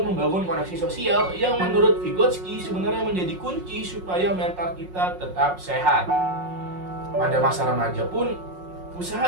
membangun koneksi sosial yang menurut Vygotsky sebenarnya menjadi kunci supaya mental kita tetap sehat. Pada masa remaja pun,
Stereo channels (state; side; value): late; left; 5.5 ms